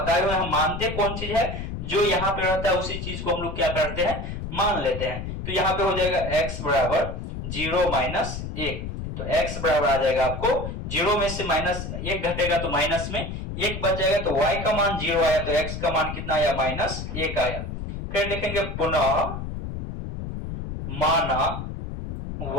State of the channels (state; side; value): noise; left; rumble, 6 dB below the sound